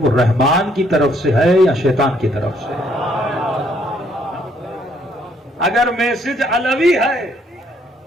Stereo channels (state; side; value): normal; both; correlation 0.67